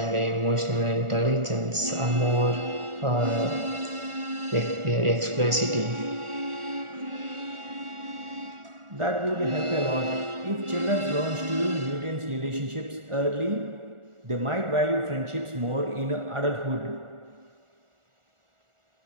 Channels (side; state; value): left; late; 1.4 ms